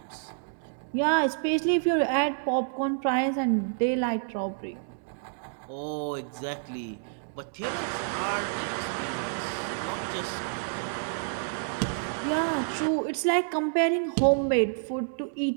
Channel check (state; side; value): silent; left; digital silence